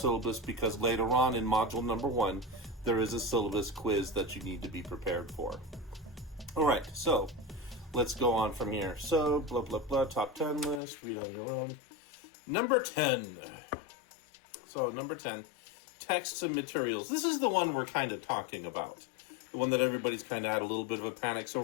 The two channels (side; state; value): right; drops out; at 10.8 s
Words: because later on in module number 1, there is a syllabus quiz that you need to be prepared for. All right, so let's go on from here. So, blah, blah, blah, top 10 list, read on your own. Number 10. So, number 10, texts and materials. This is the one we're kind of talking about. The one that everybody's kind of had a little bit of a panic. So,